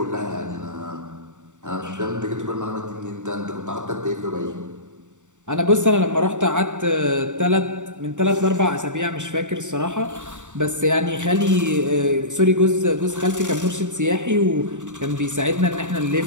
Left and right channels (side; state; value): left; late; 0.85 ms